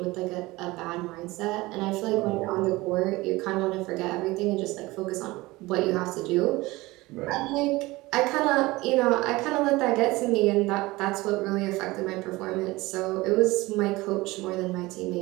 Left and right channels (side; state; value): left; quieter; 20.6 dB